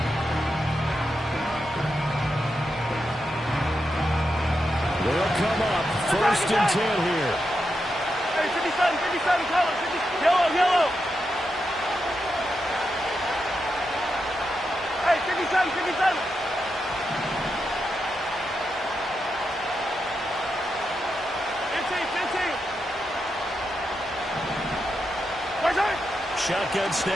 They'll come up first and 10 here. Hey, 57, 57, color, 50, yellow, yellow. Hey, 57, 57. Shotgun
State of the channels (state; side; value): normal; both; correlation 0.86